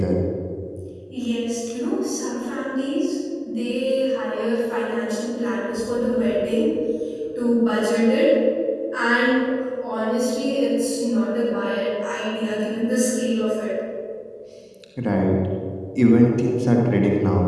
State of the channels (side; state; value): both; identical; correlation 1.00